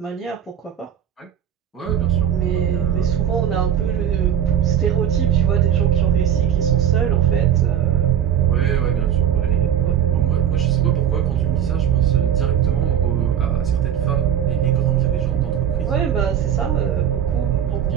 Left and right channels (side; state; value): left; quieter; 9.6 dB